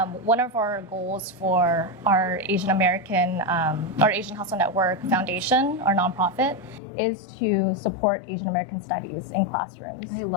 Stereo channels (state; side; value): drops out; right; at 6.8 s